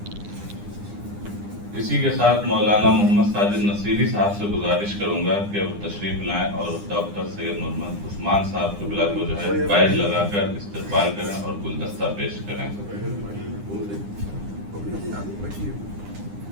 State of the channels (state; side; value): late; left; 9.9 ms